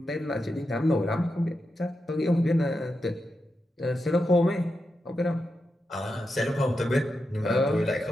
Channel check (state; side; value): normal; both; correlation 0.88